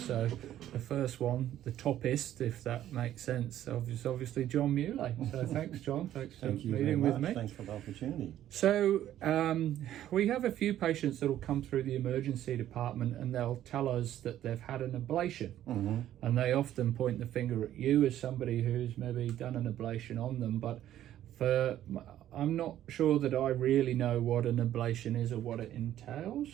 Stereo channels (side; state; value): left; quieter; 12.2 dB